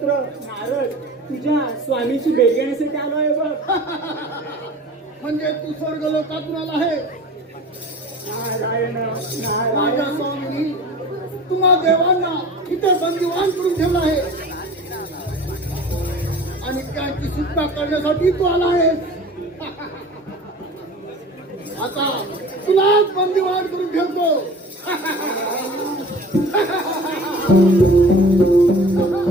नारद तुझ्या स्वामीची भेट घेण्यासाठी आलो आहे बघ. म्हणजे तू स्वर्ग लोकातून आला आहे नारायण माझ्या नारायण स्वामींनी तुम्हा देवांना इथे बंदिवान करून ठेवला आहे आणि त्यांची सुटका करण्यासाठी तू आला आहे आता तुलाच बंदिवान करून ठेवतो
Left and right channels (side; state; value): both; normal; correlation 0.41